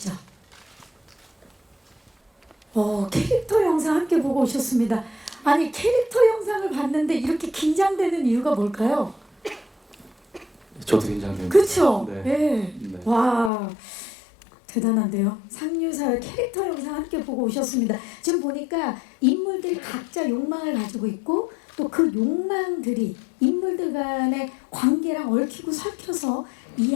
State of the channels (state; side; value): drops out; right; at 13.5 s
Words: 캐릭터 영상 함께 보고 오셨습니다. 아니 캐릭터 영상을 봤는데 이렇게 긴장되는 이유가 뭘까요? 저도 긴장됩니다. 그렇죠? 네. 네. 네. 와 대단한데요. 상류사회 캐릭터 영상 함께 보고 오셨습니다. 지금 보니까 인물들이 각자 욕망을 가지고 있고 또 그 욕망들이 인물들 간의 관계랑 얽히고 설켜서